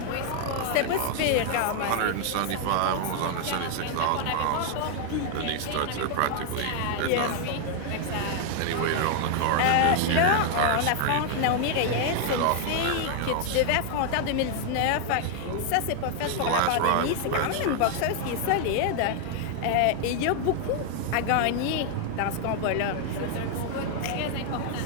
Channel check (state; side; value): different; both; correlation 0.00